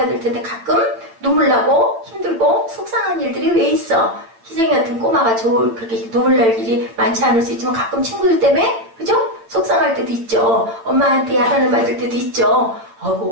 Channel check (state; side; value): late; left; 8.9 ms